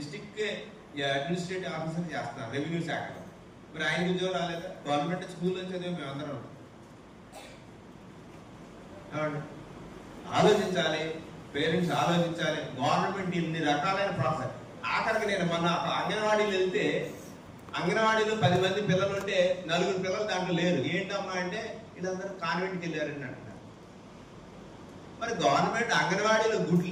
అడ్మినిస్ట్రేటివ్ ఆఫీసర్ చేస్తున్నారు రెవెన్యూ శాఖలో, మరి ఆయనకు ఉద్యోగం రాలేదా? గవర్నమెంట్ స్కూల్లో చదివి మేమందరం. ఆలోచించాలి, పేరెంట్స్ ఆలోచించాలి. గవర్నమెంట్ ఇన్ని రకాలైన ప్రాసెస్. ఆఖరికి నేను మొన్న అంగన్వాడీలు వెళ్తే, అంగన్వాడీలో 10 మంది పిల్లలు ఉంటే 4 పిల్లలు దాంట్లో లేరు. ఏంటమ్మా అంటే వీళ్ళందరూ కాన్వెంట్కి వెళ్ళారని అంటున్నారు. మరి గవర్నమెంట్ అంగన్వాడీలో గుడ్లు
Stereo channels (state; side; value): identical; both; correlation 1.00